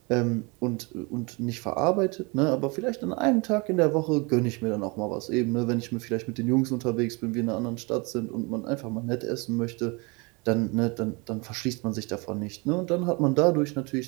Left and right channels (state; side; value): quieter; left; 28.7 dB